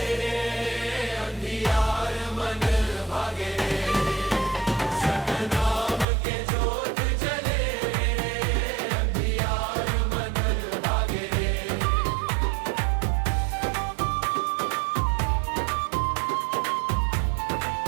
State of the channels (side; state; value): left; drops out; at 6.1 s